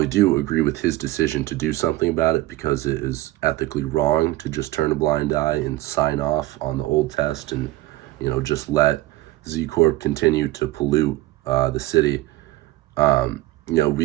do agree with his decision to do something about it, because it is ethically wrong to just turn a blind eye and sign off on the old test and just let Z Corp continue to pollute the city,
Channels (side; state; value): left; quieter; 17.7 dB